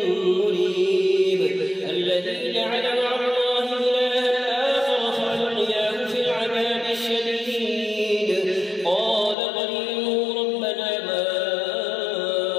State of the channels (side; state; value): right; drops out; at 9.3 s